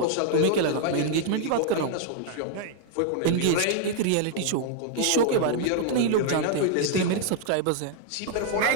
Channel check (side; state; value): both; different; correlation -0.01